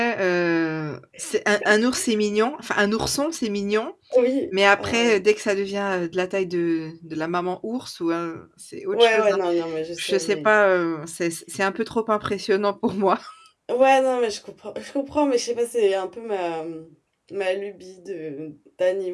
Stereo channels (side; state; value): both; identical; correlation 1.00